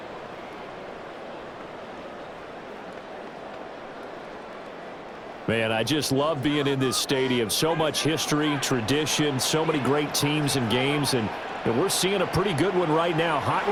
Man, I just love being in this stadium. So much history, tradition, so many great teams and games, and we're seeing a pretty good one right now,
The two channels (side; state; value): both; identical; correlation 1.00